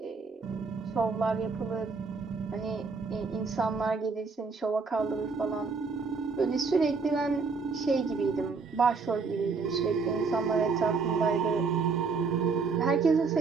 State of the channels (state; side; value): quieter; left; 4.7 dB